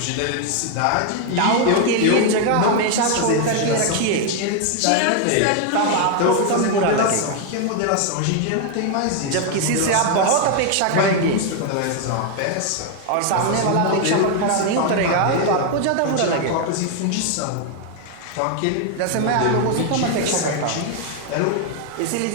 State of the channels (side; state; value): both; different; correlation 0.00